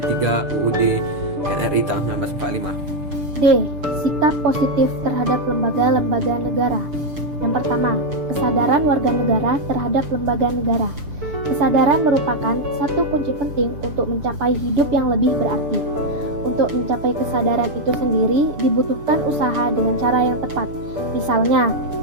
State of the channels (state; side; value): late; left; 6.8 ms